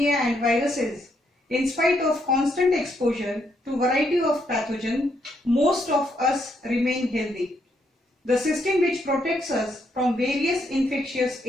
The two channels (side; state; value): both; normal; correlation 0.75